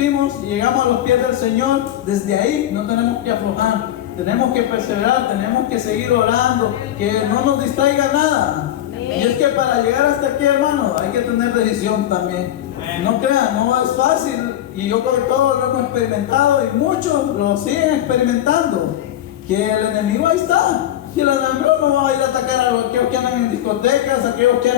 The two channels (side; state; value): right; quieter; 12.2 dB